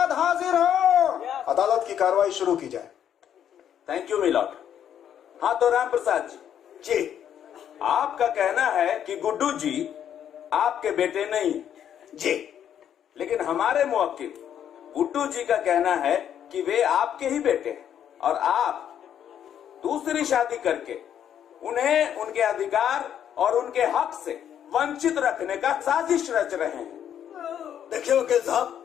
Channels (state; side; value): quieter; right; 9.5 dB